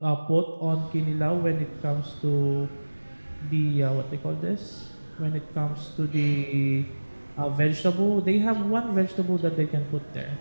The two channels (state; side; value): inverted; both; correlation -1.00